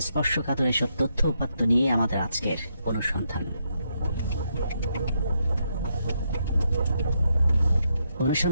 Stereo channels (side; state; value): both; inverted; correlation -0.79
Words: স্পর্শকাতর এসব তথ্য উপাত্ত নিয়ে আমাদের আজকের অনুসন্ধান।